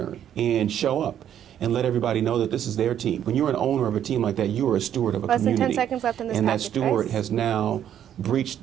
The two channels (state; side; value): quieter; left; 10.1 dB